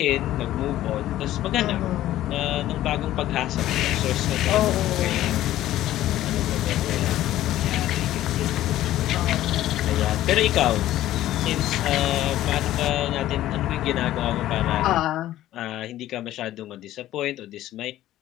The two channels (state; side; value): quieter; right; 13.9 dB